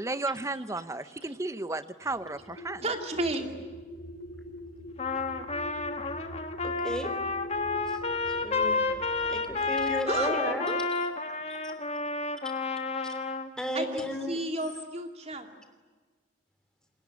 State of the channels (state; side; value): normal; both; correlation 0.03